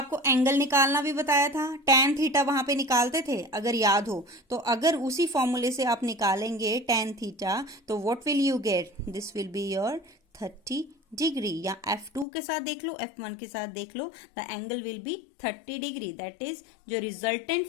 एंगल निकालना भी बताया था, tan थीटा वहां पे निकालते थे अगर याद हो, तो अगर उसी फॉर्मूले से आप निकालेंगे tan थीटा, तो what will you gate? This will be your 30 degree, या F2 के साथ देख लो, F1 के साथ देख लो, the angle will be 30 degree. That is जो रिजल्टेंट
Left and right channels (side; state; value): right; drops out; at 12.2 s